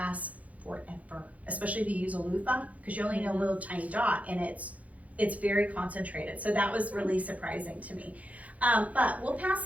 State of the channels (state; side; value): late; left; 0.070 ms